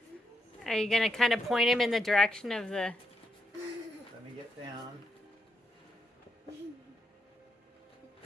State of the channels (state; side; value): normal; both; correlation 0.81